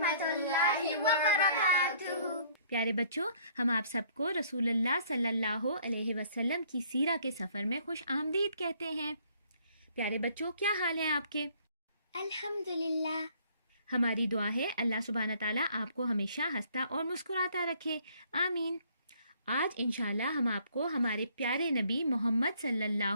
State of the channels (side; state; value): both; inverted; correlation -0.61